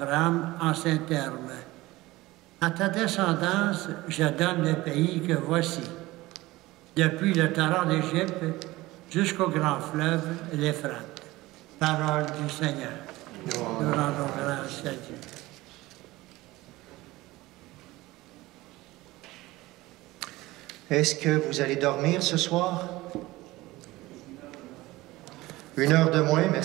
en ces termes. « À ta descendance, je donne le pays que voici, depuis le torrent d'Égypte jusqu'au grand fleuve, l'Euphrate. » Parole du Seigneur. Nous rendons grâce à Dieu. Est-ce que vous allez dormir ce soir? 1 heure de moins,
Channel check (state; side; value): quieter; left; 19.1 dB